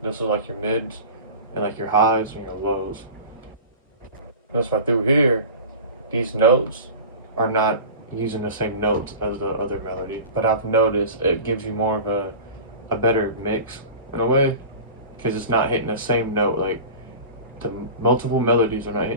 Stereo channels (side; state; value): both; inverted; correlation -0.35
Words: This is like your mids and like your highs and your lows. That's why through here, these notes are not using the same notes as the other melody. But I've noticed it gives you more of a better mix in a way, because it's not hitting the same note. Like the multiple melodies are not